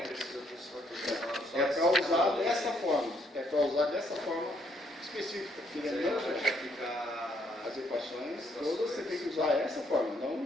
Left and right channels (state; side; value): normal; both; correlation 0.71